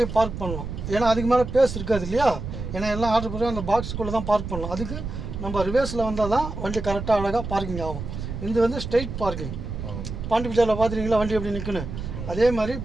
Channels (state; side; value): noise; right; rumble, 7 dB below the sound